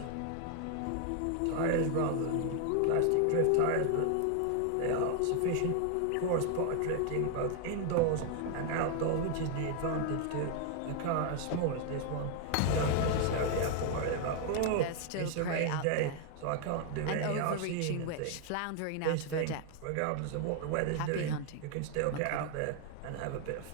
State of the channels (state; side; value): different; both; correlation 0.00